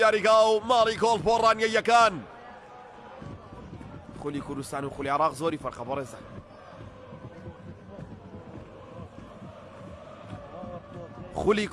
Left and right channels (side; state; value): both; identical; correlation 1.00